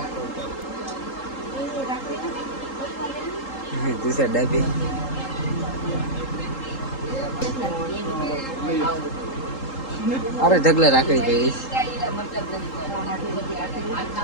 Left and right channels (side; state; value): right; late; 3.8 ms